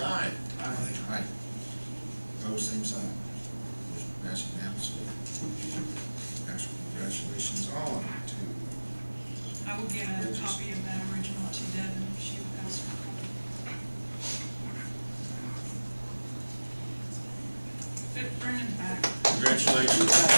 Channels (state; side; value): inverted; both; correlation -1.00